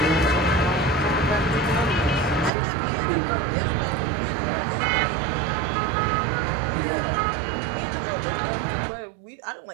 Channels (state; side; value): drops out; left; at 2.5 s